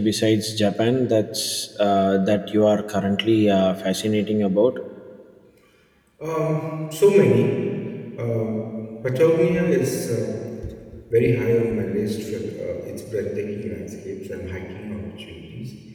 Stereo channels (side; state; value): both; identical; correlation 1.00